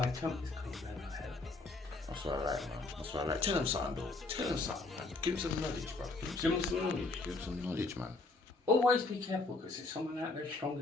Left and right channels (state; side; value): quieter; right; 3.4 dB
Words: attempt is coming down my head. That's what I like, man. That's what I like. Tell him something, though. Tell him something, man. Give him some knowledge, bro. Give him some knowledge. Give him some knowledge, man. Always be careful because there's someone out there stronger